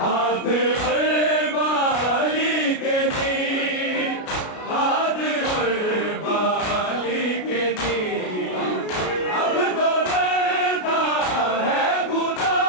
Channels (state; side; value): late; right; 33 ms